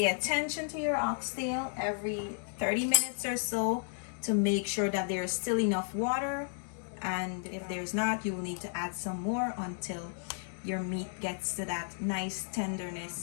attention to your oxtail every 30 minutes or so to make sure that there's still enough water, and if there's not, you will need to add some more until your meat gets to that nice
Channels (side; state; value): right; silent; digital silence